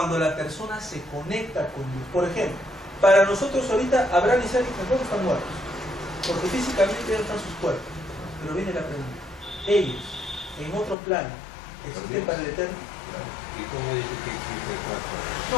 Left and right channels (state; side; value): drops out; right; at 11.0 s